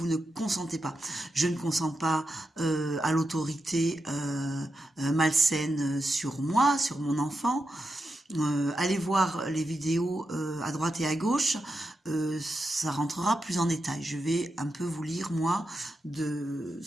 ne consentez pas. Je ne consens pas à l'autorité malsaine sur moi, sur mon enfant. Allez voir les vidéos à droite et à gauche, ça rentrera plus en détail. Je vais un peu vous lire moi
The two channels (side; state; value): both; normal; correlation 0.87